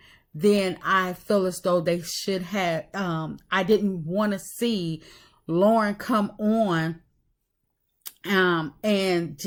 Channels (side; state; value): both; identical; correlation 1.00